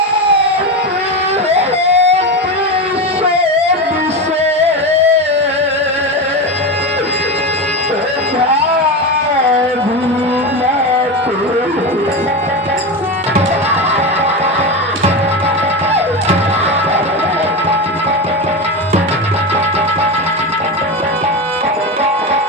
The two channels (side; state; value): both; normal; correlation 0.19